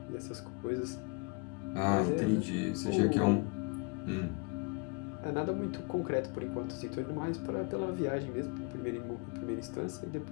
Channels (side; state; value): right; quieter; 31.4 dB